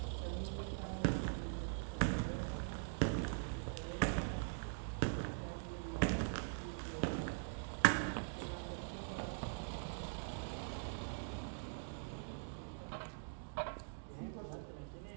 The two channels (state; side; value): silent; left; digital silence